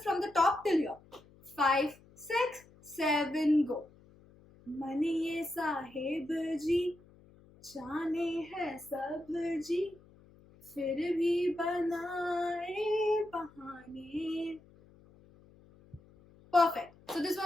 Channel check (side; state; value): left; noise; hum, 26 dB below the sound